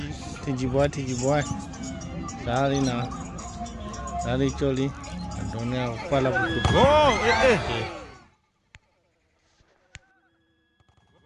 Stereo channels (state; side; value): identical; both; correlation 1.00